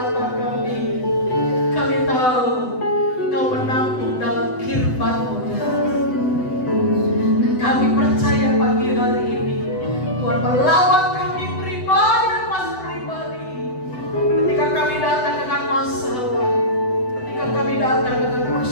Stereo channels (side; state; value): right; late; 7.9 ms